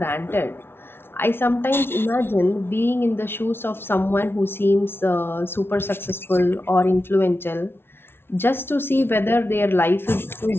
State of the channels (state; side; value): late; right; 0.11 ms